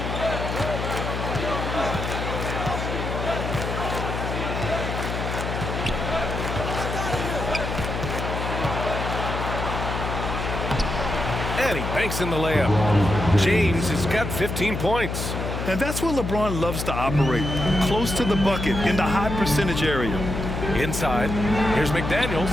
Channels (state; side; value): noise; left; hum, 4 dB below the sound